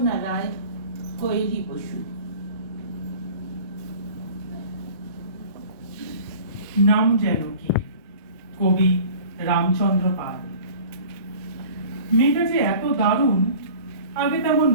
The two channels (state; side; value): inverted; both; correlation -0.44